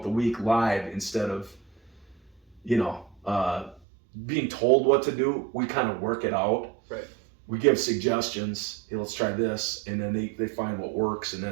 the week live instead of, being told what to do. We kind of work it out. Right. We give suggestions. Hey, let's try this, and then they find what works, and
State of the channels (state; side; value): drops out; left; at 3.8 s